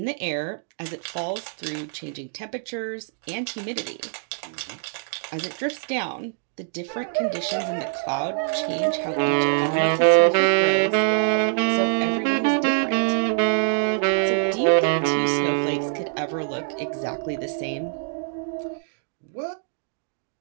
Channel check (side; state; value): left; silent; digital silence